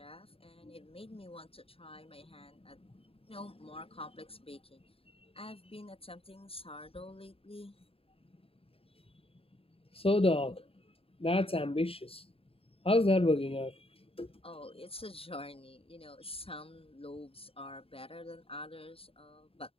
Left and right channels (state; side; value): late; right; 0.27 ms